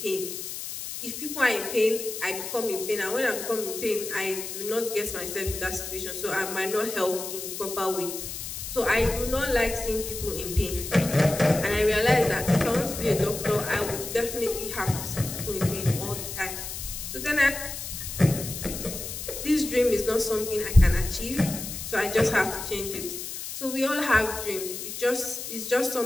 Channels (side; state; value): left; noise; hiss, 7 dB below the sound